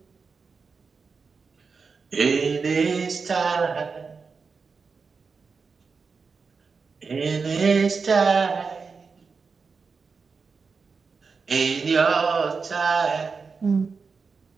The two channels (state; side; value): quieter; left; 5.0 dB